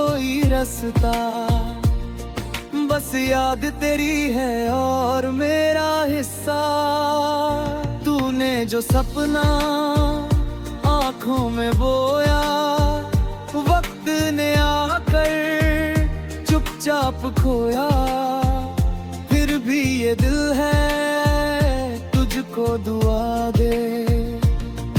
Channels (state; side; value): identical; both; correlation 1.00